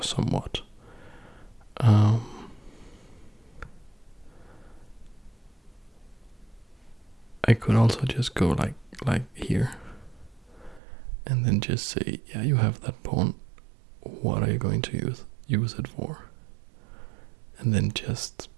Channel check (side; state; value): left; drops out; at 10.8 s